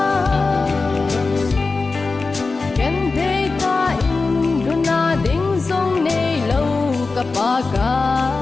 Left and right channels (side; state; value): right; quieter; 3.9 dB